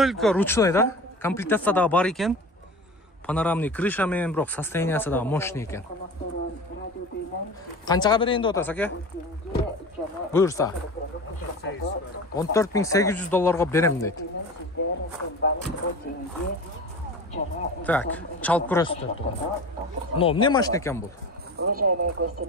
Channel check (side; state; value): both; normal; correlation 0.34